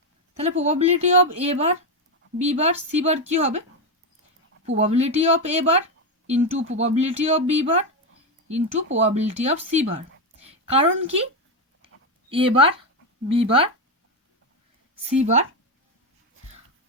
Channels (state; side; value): normal; both; correlation 0.09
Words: তাহলে probability of A bar B bar C bar কি হবে, probability of A bar into probability of B bar into probability of C bar. কারণ কি A bar B bar C bar